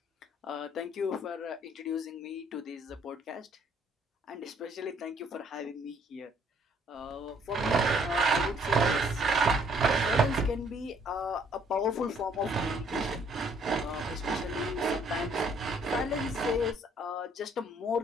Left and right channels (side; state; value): both; normal; correlation 0.63